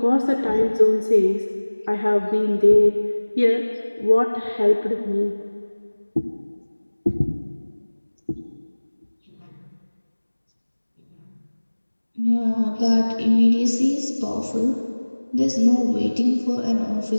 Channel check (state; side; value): inverted; both; correlation -1.00